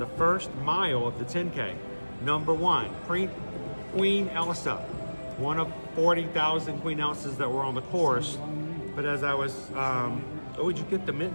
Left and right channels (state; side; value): inverted; both; correlation -1.00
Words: first mile of the 10K. Number one, Queen Elsa, one of 40,000 Queen Elsas that were on the course. But as I was, oh, did you get the